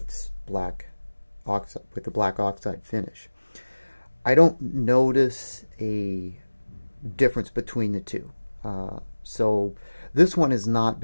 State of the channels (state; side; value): inverted; both; correlation -1.00